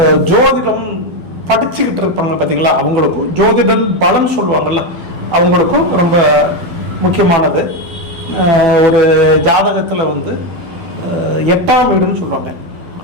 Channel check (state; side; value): late; left; 12 ms